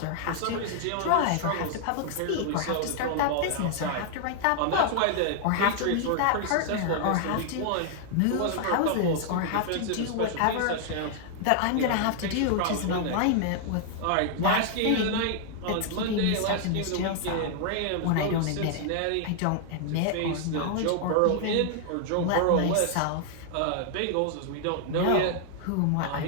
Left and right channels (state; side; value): different; both; correlation 0.00